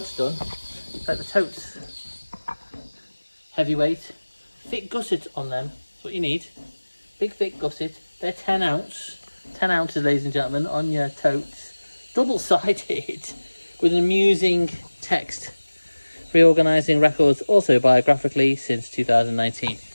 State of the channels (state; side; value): inverted; both; correlation -1.00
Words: done. Like the totes. Heavyweight. Thick gusset on them. That's what you need. Big thick gusset. They're 10 ounce. 10 ounces, ladies and gentlemen, on your totes. Double-sided. With an amusing text, reorganising records also biographically since 2019.